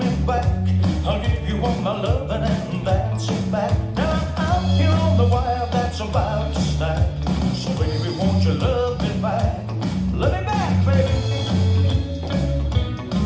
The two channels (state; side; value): identical; both; correlation 1.00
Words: back. I'll give you all my loving, and that's a fact. Now I'm out here on the wire that's about to snap. So baby, won't you love me back? Love me back, baby.